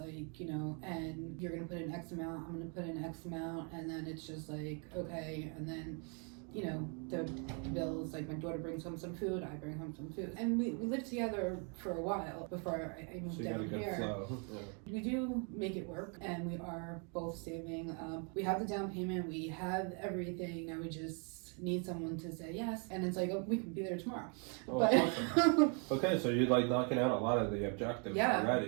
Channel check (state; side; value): quieter; left; 37.8 dB